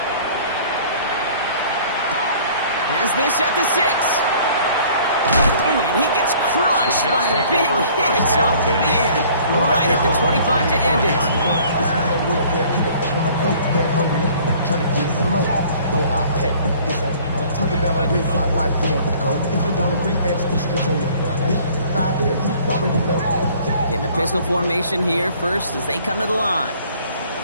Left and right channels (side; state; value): both; inverted; correlation -0.54